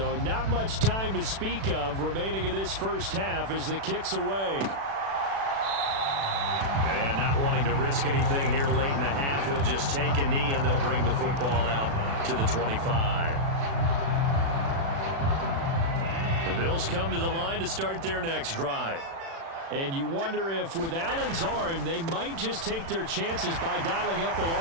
not much time to speak of remaining in this first half as the kick's away. And not wanting to risk anything here late in the half, he'll just take a knee and they'll bring the football out to the 25. The Bills come to the line to start their next drive. And you wonder if with Allen's arm, they might just take their chances by dialing up a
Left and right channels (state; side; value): late; left; 36 ms